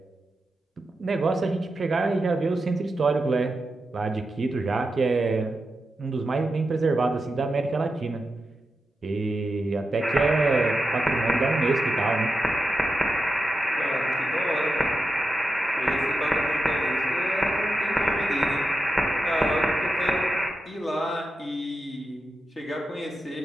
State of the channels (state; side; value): normal; both; correlation 0.89